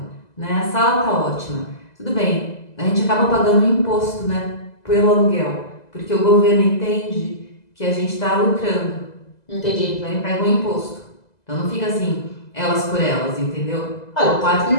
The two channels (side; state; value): right; late; 2.0 ms